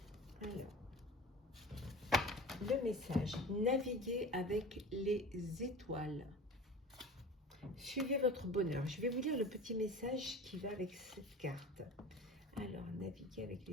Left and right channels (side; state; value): both; normal; correlation 0.36